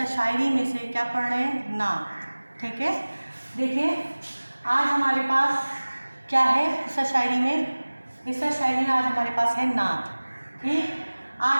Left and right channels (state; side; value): inverted; both; correlation -1.00